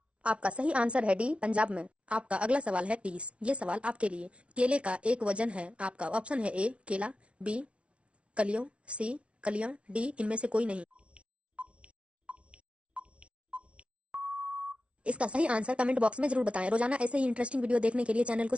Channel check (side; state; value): left; late; 0.061 ms